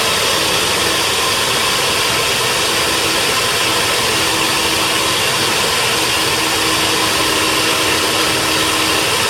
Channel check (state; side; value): identical; both; correlation 1.00